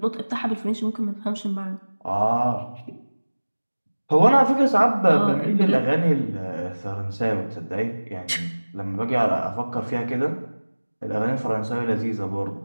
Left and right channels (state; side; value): inverted; both; correlation -1.00